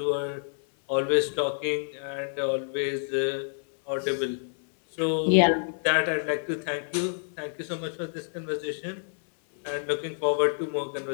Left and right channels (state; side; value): silent; right; digital silence